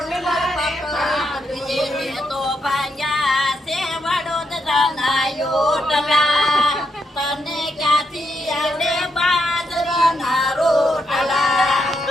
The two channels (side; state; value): both; normal; correlation 0.80